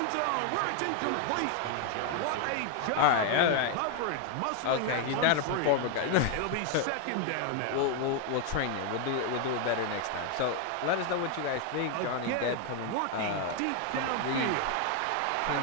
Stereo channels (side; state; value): both; different; correlation 0.01